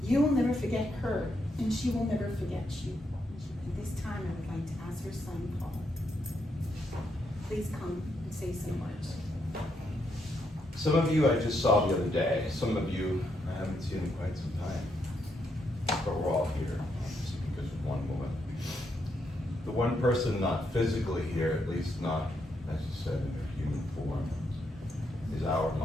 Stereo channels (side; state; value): both; normal; correlation 0.79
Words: You will never forget her, and she will never forget you. At this time, I would like to ask her son, Paul. Please come and say some words. Some of you I just saw the other day. Some of you I haven't seen in quite some time. But we're all here, obviously, because of one woman. The one person not physically here, at least not, as you said, in her human form, is our